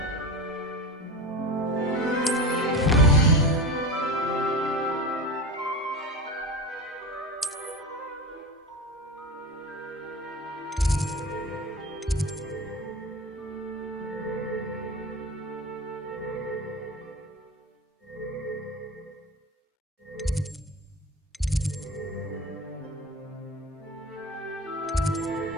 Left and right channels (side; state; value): both; normal; correlation 0.27